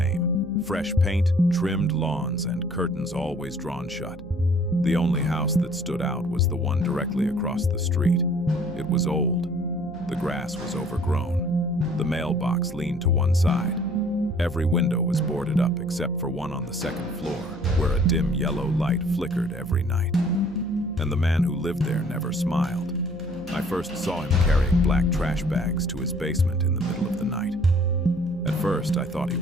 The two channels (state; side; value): noise; right; hum, 18 dB below the sound